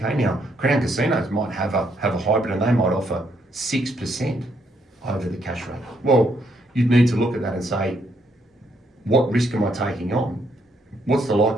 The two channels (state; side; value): normal; both; correlation 0.73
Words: now Crown casinos might have a hybrid and they might offer 6% over the cash rate. Well, you'd need to look at that and say, what risk am I taking on? What's the